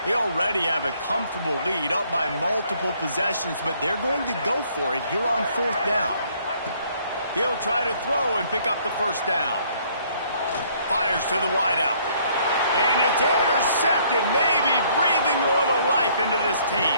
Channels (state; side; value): inverted; both; correlation -0.63